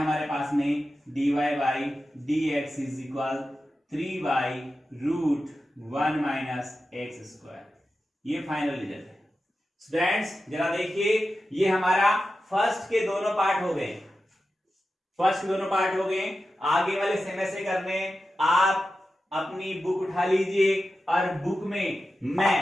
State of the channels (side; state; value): both; normal; correlation 0.92